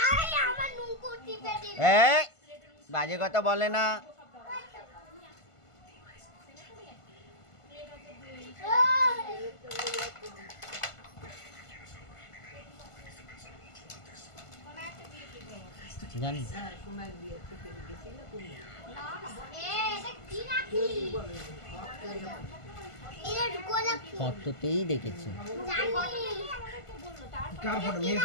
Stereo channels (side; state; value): right; late; 1.5 ms